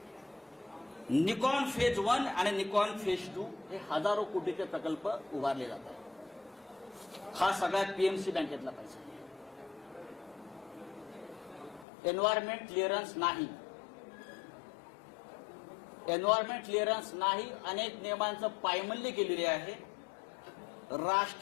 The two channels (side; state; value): right; drops out; at 11.9 s